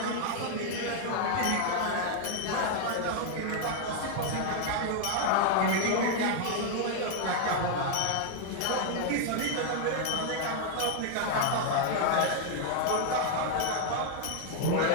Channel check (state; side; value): different; both; correlation 0.00